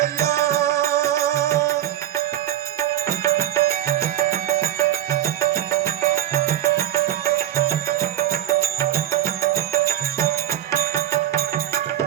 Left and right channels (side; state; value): left; quieter; 12.2 dB